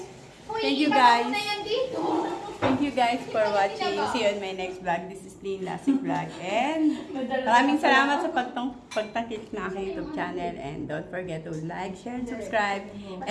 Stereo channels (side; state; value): both; identical; correlation 1.00